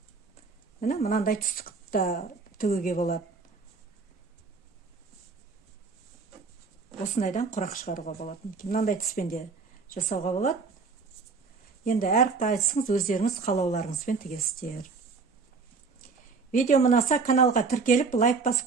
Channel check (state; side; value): quieter; left; 4.6 dB